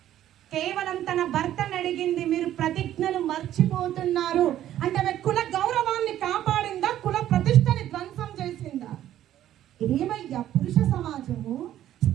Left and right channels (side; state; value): left; quieter; 12.2 dB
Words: కేవలం తన భర్తను అడిగింది. మీరు ప్రతిజ్ఞలు మర్చిపోతున్నారు అంటే ఆమె కుల గౌరవాన్ని కాపాడిందా? కుల ప్రతిష్టని ధ్వంసం చేసిందా? ఏమయ్యా పురుష సమాజము